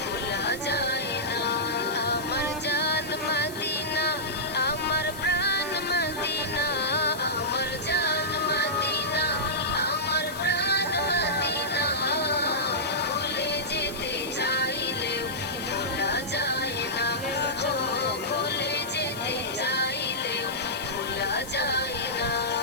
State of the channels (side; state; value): left; noise; hiss, 15 dB below the sound